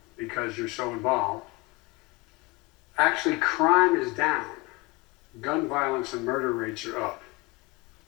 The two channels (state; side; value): quieter; right; 24.4 dB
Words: because you're so involved, actually crime is down. Gun violence and murder rates are up.